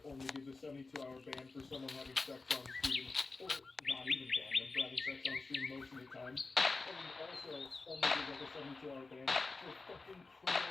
only gives a 72-hour ban for someone having sex on stream, or not even ban them for having sex on stream most of the time. And also only gives like a 72-hour ban for fucking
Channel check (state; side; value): quieter; right; 3.8 dB